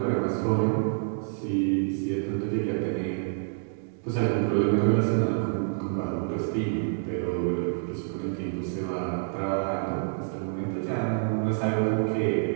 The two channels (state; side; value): silent; left; digital silence